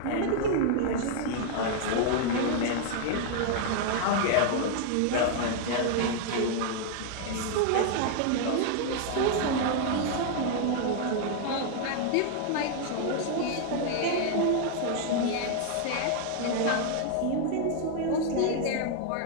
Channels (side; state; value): both; different; correlation 0.00